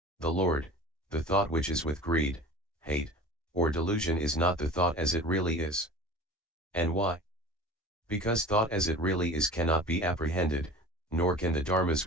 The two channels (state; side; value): normal; both; correlation 0.39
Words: The Lord, the thought which is with greed, hate, or delusion is not the thought as it really is. And why? Because thought as it really is cannot be apprehended, nor can the dharmas